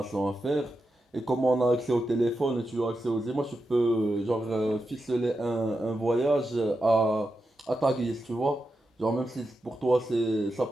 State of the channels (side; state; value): both; normal; correlation 0.88